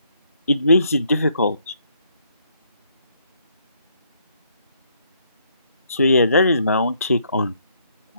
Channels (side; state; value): both; inverted; correlation -0.70